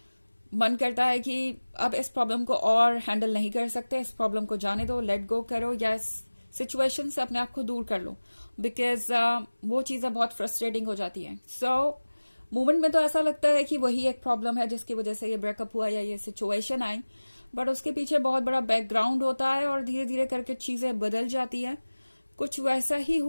मन करता है कि अब इस प्रॉब्लम को और हैंडल नहीं कर सकते, इस प्रॉब्लम को जाने दो, लेट गो करो, या इस सिचुएशन से अपने आप को दूर कर लो। बिकॉज वो चीज़ें बहुत फ्रस्ट्रेटिंग हो जाती हैं। मोमेंट में तो ऐसा लगता है कि वही एक प्रॉब्लम है जिसकी वजह से ये ब्रेकअप हुआ या ये सिचुएशन आई, बट उसके पीछे बहुत बड़ा बैकग्राउंड होता है और धीरे धीरे करके चीज़ें बदल जाती है। कुछ वैसा ही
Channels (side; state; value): both; inverted; correlation -1.00